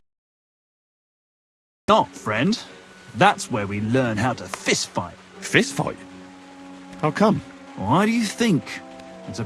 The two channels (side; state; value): both; identical; correlation 1.00